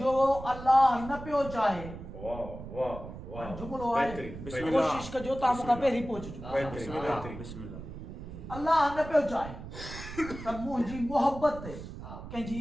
जो अल्लाह न पियो चाहे जुमलो आहे कोशिश कजो तव्हां मूंखां पहिरीं पहुचजो अल्लाह न पियो चाहे त मुंहिंजी मोहबत ते कंहिंजी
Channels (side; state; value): right; noise; rumble, 11 dB below the sound